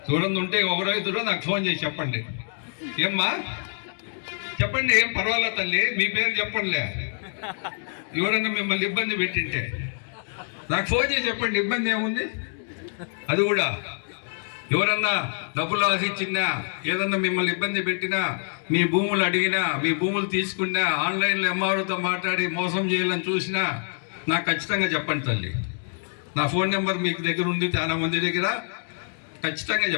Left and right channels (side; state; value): right; silent; 61 dB below the other